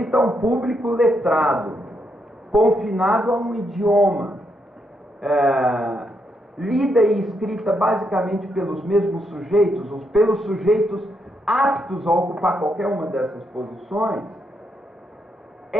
a um público letrado, confinado a um idioma, lida e escrita basicamente pelos mesmos sujeitos, ou pelos sujeitos aptos a ocupar qualquer uma dessas posições,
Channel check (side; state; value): both; normal; correlation 0.79